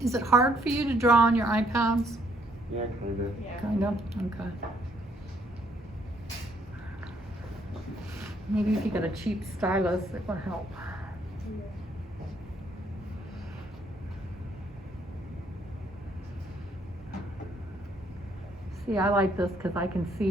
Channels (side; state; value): both; normal; correlation 0.68